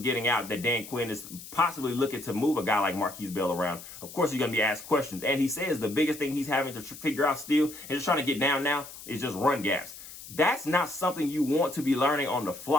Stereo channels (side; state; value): left; noise; hiss, 15 dB below the sound